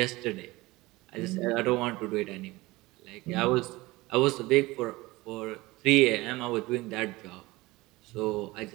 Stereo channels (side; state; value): left; quieter; 20.6 dB